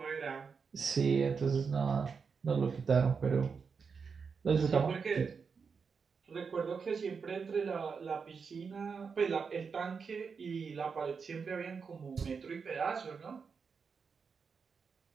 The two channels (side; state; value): left; quieter; 5.6 dB